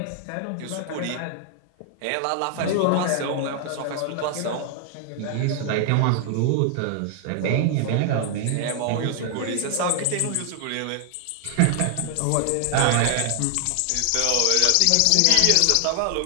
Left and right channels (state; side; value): different; both; correlation 0.00